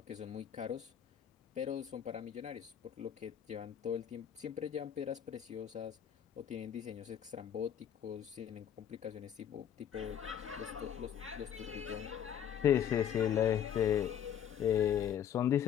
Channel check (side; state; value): right; quieter; 9.4 dB